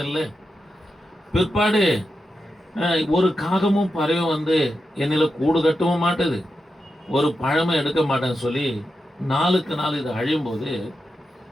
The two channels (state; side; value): normal; both; correlation 0.88